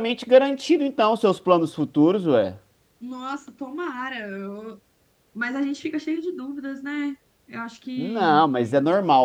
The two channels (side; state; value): both; identical; correlation 1.00